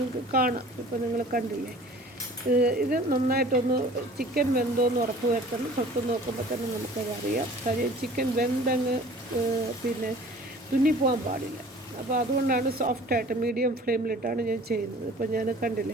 കാണാം. ഇപ്പോൾ നിങ്ങൾ കണ്ടില്ലേ, ഇത് നന്നായിട്ടൊന്ന് ചിക്കൻ വെന്തോന്ന് ഉറപ്പ് വരുത്തണം. തൊട്ട് നോക്കുമ്പോൾ തന്നെ നമുക്കതറിയാം. കാര്യം ചിക്കൻ വെന്തങ്ങ് പിന്നെ തുന്നിപ്പോകാൻ പാടില്ല. അപ്പോൾ അതുകൊണ്ടാണ് സോഫ്റ്റായിട്ട് മീഡിയം ഫ്ലെയിമിലിട്ടാണ് ഞാൻ ചെയ്യുന്നത്. ഇപ്പോൾ ഞാൻ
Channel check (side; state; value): both; normal; correlation 0.47